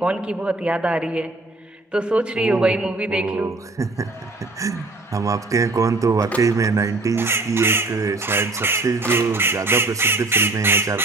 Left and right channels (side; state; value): left; quieter; 3.2 dB